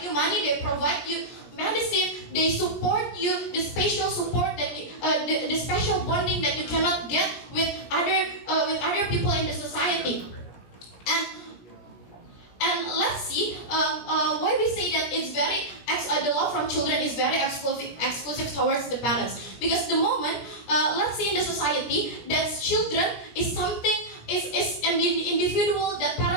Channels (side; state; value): right; late; 17 ms